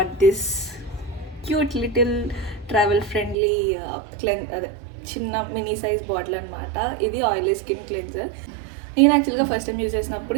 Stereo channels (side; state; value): left; drops out; at 3.4 s